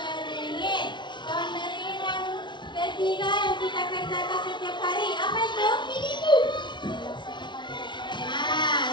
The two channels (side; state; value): right; late; 0.23 ms